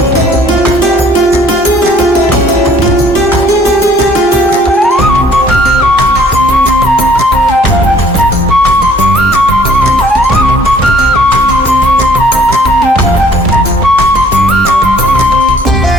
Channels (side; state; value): both; normal; correlation 0.58